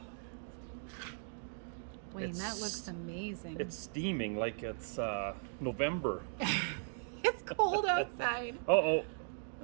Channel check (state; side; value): silent; left; digital silence